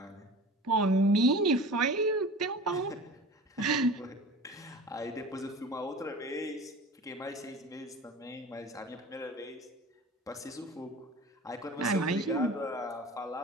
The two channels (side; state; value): both; normal; correlation 0.38